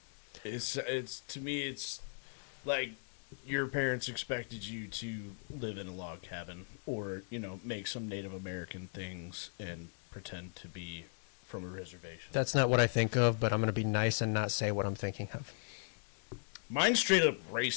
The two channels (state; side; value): silent; right; 53 dB below the other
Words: It's to me it's like your parents expected you to live in a log cabin or, make some Native American things and pretend to be from a reservation. That's not what I think of, but I'm going to be nice and not say what I'm thinking of. Mine's straight up